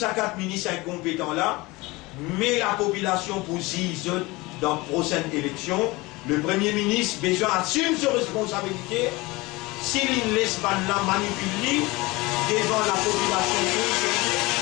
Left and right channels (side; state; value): right; quieter; 22.3 dB